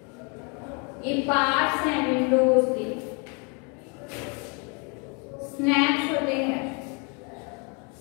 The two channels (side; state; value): right; quieter; 34.2 dB